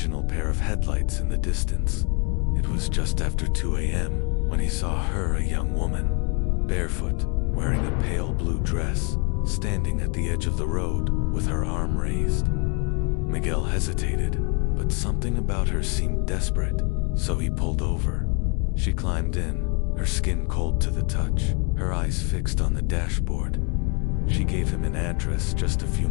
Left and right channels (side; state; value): right; quieter; 35.5 dB